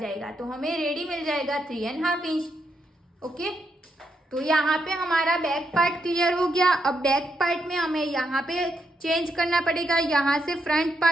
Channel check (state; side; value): normal; both; correlation 0.80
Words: तो हमें रेडी मिल जाएगा 3½ इंच। ओके, तो यहाँ पे हमारा बैक पार्ट क्लियर हो गया। अब बैक पार्ट में हमें यहाँ पे चेंज करना पड़ेगा। यहाँ से फ्रंट